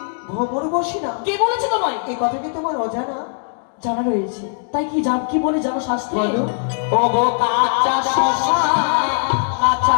ভ্রমণ বসে না কে বলেছে তোমায়? এই কথা কি তোমার অজানা? জানা রয়েছে, তাই কি কি বলে জানো শাস্ত্রে? বলো। ও গো কাঁচা শশা কাঁচা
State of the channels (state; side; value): silent; right; digital silence